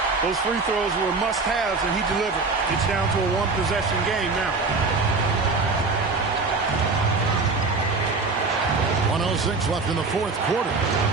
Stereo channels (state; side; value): quieter; left; 4.0 dB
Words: Those free throws were must-haves, and he delivered. It's down to a one-possession game now. 1:06 left in the fourth quarter.